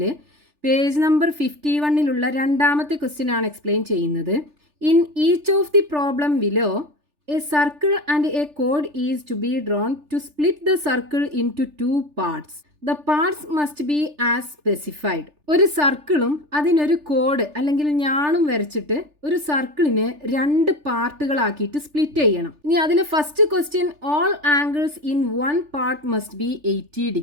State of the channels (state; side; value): late; left; 3.4 ms